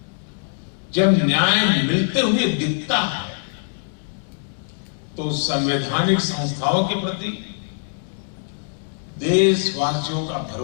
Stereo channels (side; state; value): right; silent; 64 dB below the other